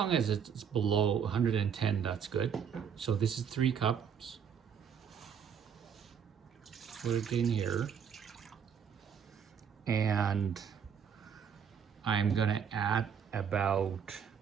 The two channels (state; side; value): quieter; left; 7.5 dB